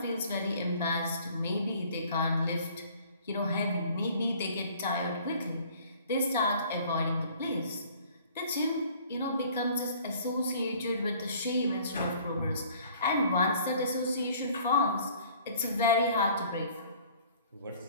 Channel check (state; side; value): inverted; both; correlation -0.53